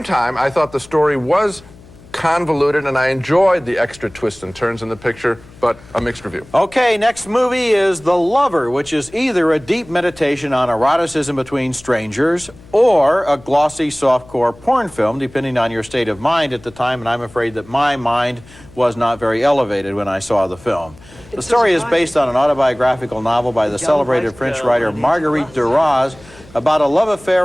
time, I thought the story was convoluted, and I enjoyed the extra twists and turns in the picture, but a mixed review. Okay, next movie is The Lover, which is either a deep meditation on eroticism between strangers or a glossy softcore porn film, depending on your state of mind at the time, and I'm afraid that my mind was not very elevated when I saw the film. The story is based on an autobiographical novel by the celebrated French writer Marguerite Duras about a love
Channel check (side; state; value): left; noise; hum, 23 dB below the sound